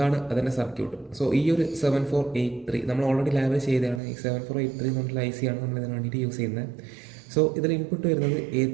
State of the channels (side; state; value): left; drops out; at 4.0 s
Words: അതിൻ്റെ സർക്യൂട്ട്. സോ ഈ ഒരു 7483 നമ്മൾ ഓൾറെഡി ലാബിൽ ചെയ്തതാണ്. ഈ 7483 എന്ന് പറഞ്ഞിട്ടുള്ള IC ആണ് നമ്മൾ ഇതിന് വേണ്ടിയിട്ട് യൂസ് ചെയ്യുന്നത്. സോ ഇതിൽ ഇൻപുട്ട് വരുന്നത്